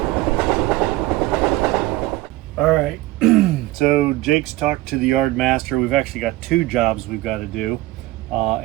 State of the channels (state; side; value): quieter; left; 18.2 dB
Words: All right, so Jake's talked to the yard master. We've actually got two jobs we've got to do.